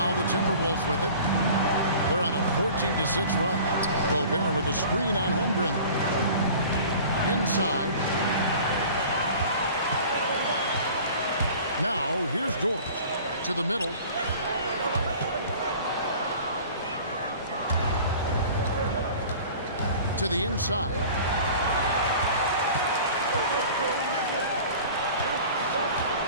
the Timberwolves with it. They're on a 14-6 run. Gobert with a screen on Holmgren. Inside. Now here's Dort to the middle. To the inside.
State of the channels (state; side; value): inverted; both; correlation -0.43